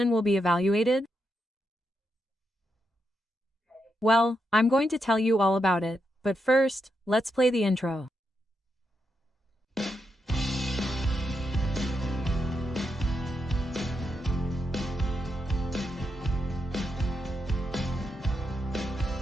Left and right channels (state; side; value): normal; both; correlation 0.84